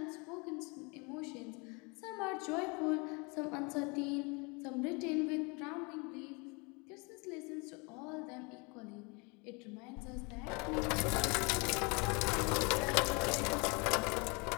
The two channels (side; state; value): right; quieter; 30.2 dB